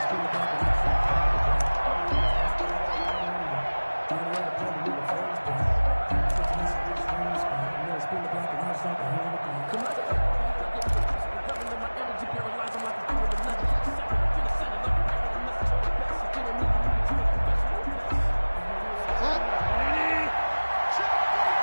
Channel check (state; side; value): inverted; both; correlation -1.00